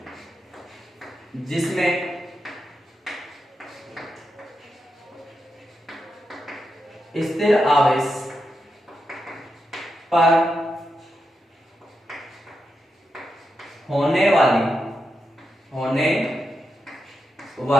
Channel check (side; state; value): both; normal; correlation 0.86